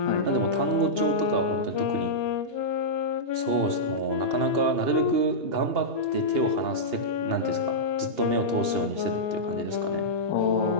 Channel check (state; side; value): late; left; 2.8 ms